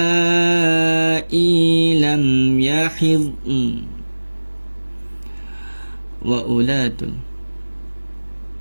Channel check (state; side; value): inverted; both; correlation -1.00